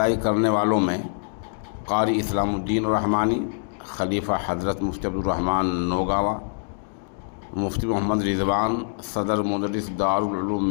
کرنے والوں میں قاری اسلام الدین الرحمانی، خلیفہ حضرت مفتی عبدالرحمن نوگاوا، مفتی محمد رضوان، صدر مدرس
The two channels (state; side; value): silent; right; digital silence